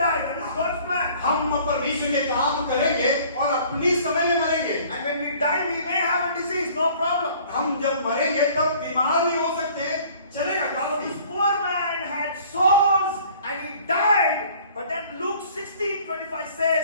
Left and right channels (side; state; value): both; inverted; correlation -0.52